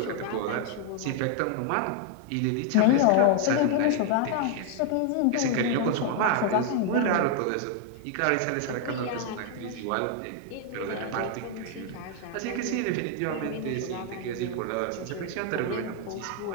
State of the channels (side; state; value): both; different; correlation 0.00